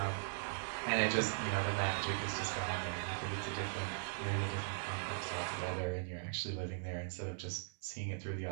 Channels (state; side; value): silent; left; digital silence